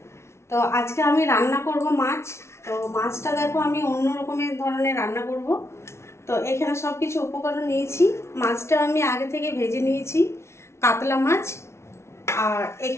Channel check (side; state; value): right; late; 0.13 ms